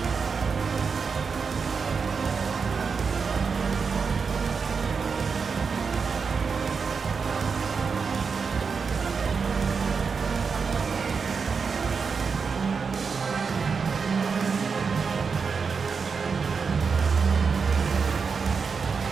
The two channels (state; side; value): quieter; left; 5.4 dB